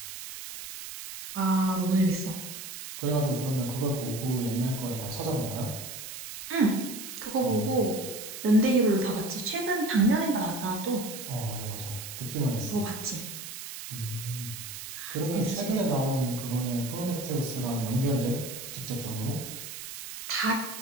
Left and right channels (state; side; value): noise; right; hiss, 10 dB below the sound